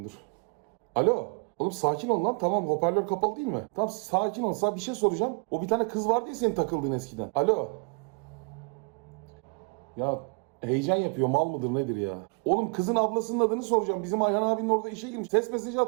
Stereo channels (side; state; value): left; quieter; 35.7 dB